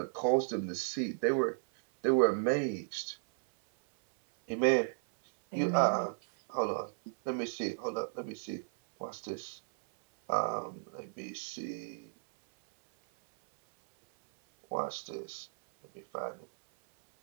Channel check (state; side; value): silent; left; 55 dB below the other